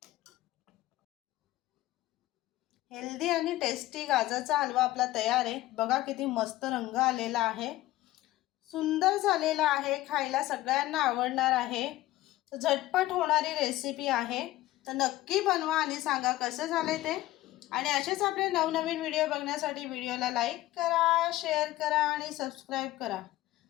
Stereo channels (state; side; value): quieter; right; 16.4 dB